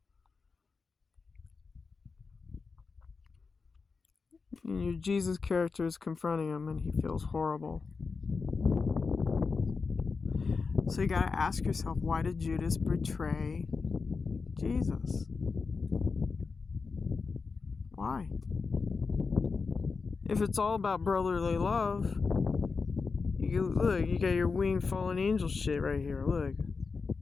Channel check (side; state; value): right; quieter; 4.7 dB